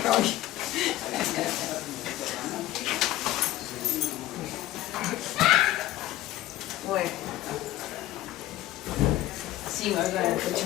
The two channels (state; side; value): quieter; right; 15.2 dB